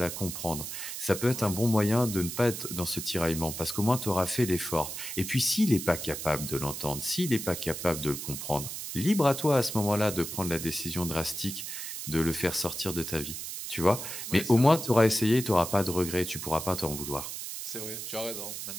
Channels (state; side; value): noise; right; hiss, 7 dB below the sound